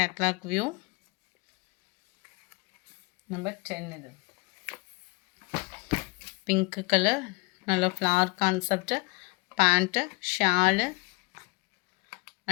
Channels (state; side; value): quieter; right; 28.1 dB